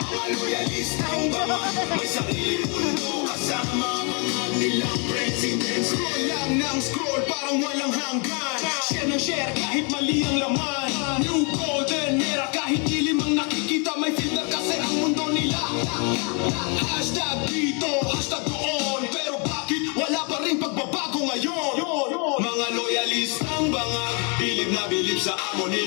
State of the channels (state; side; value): quieter; right; 34.9 dB